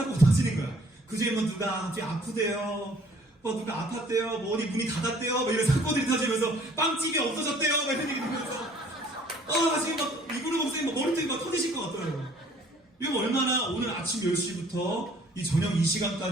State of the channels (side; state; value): both; normal; correlation 0.56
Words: 터지는 거야. 그중에 뭐 누가 갑자기 아프대요. 누가 아팠대요. 어디 문이 닫았대요. 이런 사건들이 터지면서 빵집이 없어졌대요. 이런 얘기 들으면서 지금 막 이근우 목사님 머리통이 막 터지실 것 같더라고요. 이거 얼마나 오늘 아침 10시부터 이 저녁 이